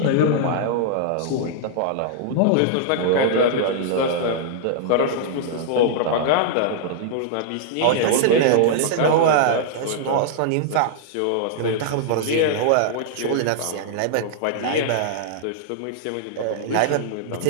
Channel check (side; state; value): both; different; correlation -0.01